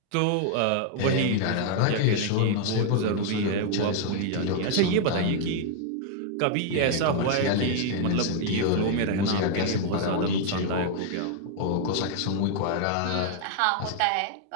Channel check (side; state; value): both; different; correlation 0.00